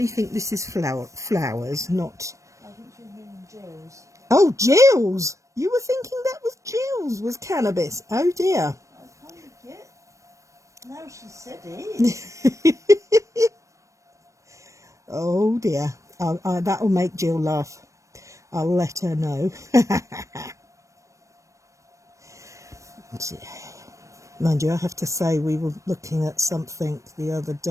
think this is flowers, not... I think you're meaning Jill's. Oh, Jill's! You were thinking that was Jill's, was cannabis. Oh, dear. I kind of get. Now she said it. Oh, dear. That'll make Jill laugh. I'll let her know. Mind you, I have to say we were looking at something the other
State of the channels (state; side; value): late; left; 0.15 ms